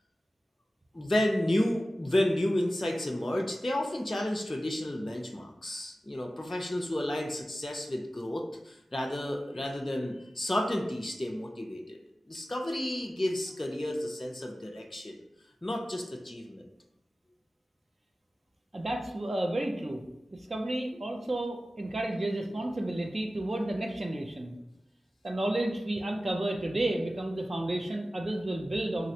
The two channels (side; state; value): both; normal; correlation 0.95